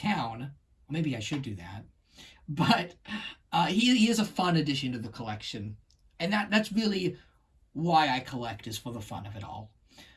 Or maybe I should do that. But he is a fun addition to the collection. And that's really why I collect, is for the fun of it all.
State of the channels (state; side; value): identical; both; correlation 1.00